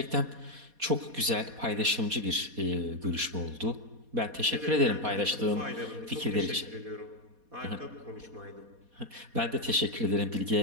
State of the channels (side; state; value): left; late; 4.2 ms